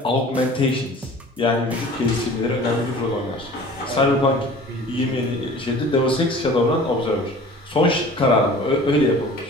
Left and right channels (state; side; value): normal; both; correlation 0.44